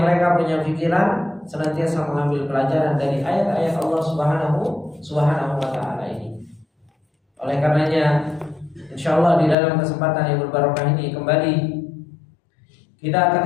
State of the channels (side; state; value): right; drops out; at 9.6 s